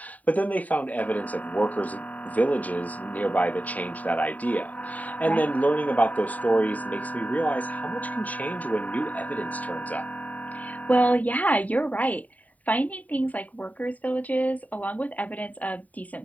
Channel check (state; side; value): late; right; 0.072 ms